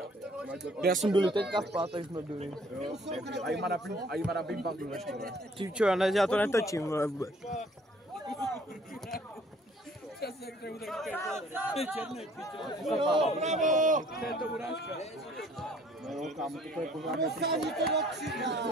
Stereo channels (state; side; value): normal; both; correlation 0.58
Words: Já jsem byl teďka v pátek, jsme byli. A jí má na bimbang ve škole. Ty čo, já to netočím, vole, vůbec. No, kámo, to je pořádně.